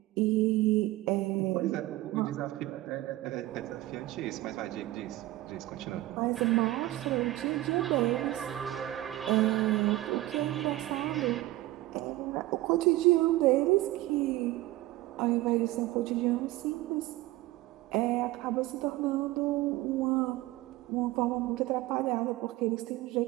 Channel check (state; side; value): quieter; left; 17.1 dB